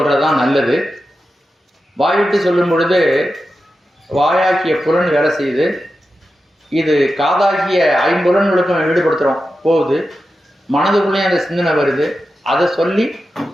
நல்லது. வாய்விட்டு சொல்லும் பொழுது வாயாக்கிய புலன் வேலை செய்யுது. இது காதாகிய 5 புலன்களுக்கும் ஈடுபடுத்துறோம் போகுது. மனதுக்குள்ளேயும் அந்த சிந்தனை வருது. அதை சொல்லி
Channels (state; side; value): normal; both; correlation 0.91